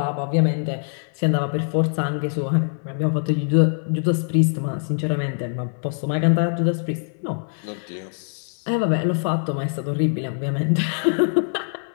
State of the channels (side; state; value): right; silent; 59 dB below the other